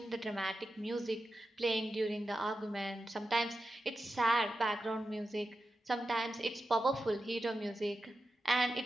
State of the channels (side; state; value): both; normal; correlation 0.91